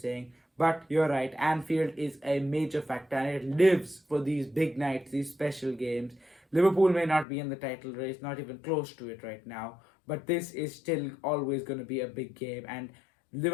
But you're right, Anfield is a major factor and it lives for these big nights, these special games. Liverpool may not be in the title race, not even close to it right now, but this is still always going to be a big game, and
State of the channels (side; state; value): right; drops out; at 7.2 s